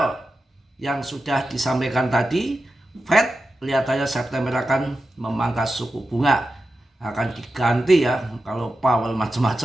yang sudah disampaikan tadi. Fed kelihatannya September akan memangkas suku bunga. Akan diganti ya kalau Powell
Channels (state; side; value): normal; both; correlation 0.91